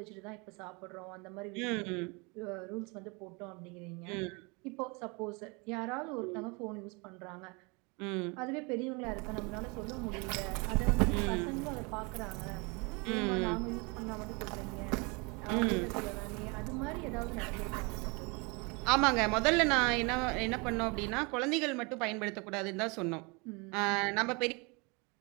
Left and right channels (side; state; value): left; quieter; 29.5 dB